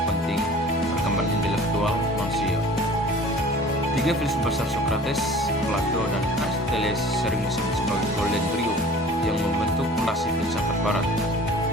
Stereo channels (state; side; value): normal; both; correlation 0.45